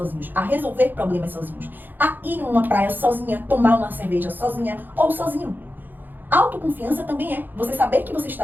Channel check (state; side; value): late; left; 0.089 ms